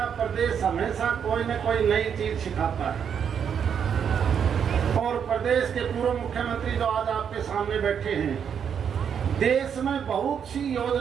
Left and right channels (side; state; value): left; quieter; 7.7 dB